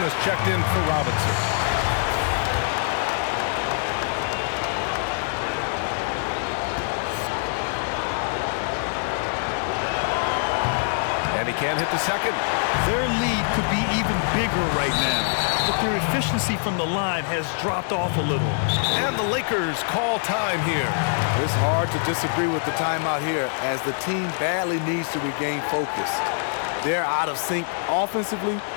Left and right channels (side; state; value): right; silent; 62 dB below the other